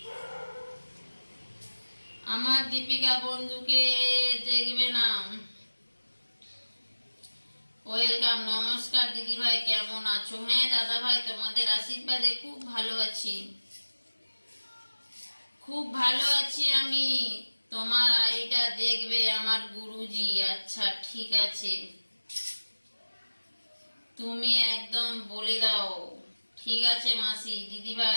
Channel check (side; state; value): both; inverted; correlation -1.00